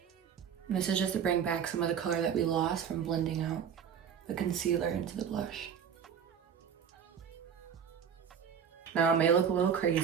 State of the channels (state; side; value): quieter; left; 7.7 dB